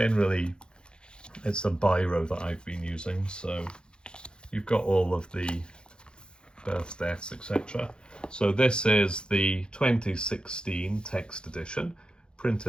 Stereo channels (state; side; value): late; right; 0.050 ms